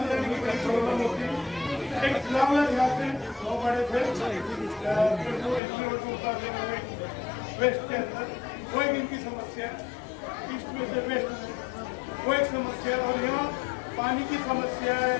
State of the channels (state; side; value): drops out; right; at 5.6 s